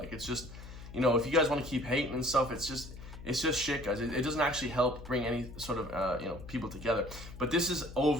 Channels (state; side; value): noise; left; hum, 14 dB below the sound